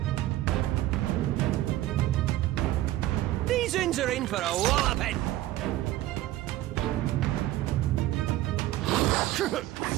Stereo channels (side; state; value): left; quieter; 15.2 dB